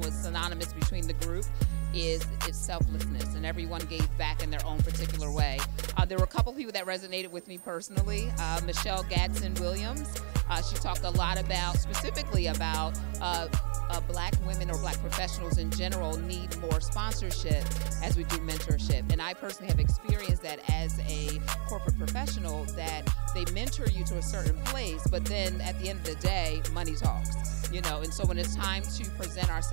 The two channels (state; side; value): silent; left; 57 dB below the other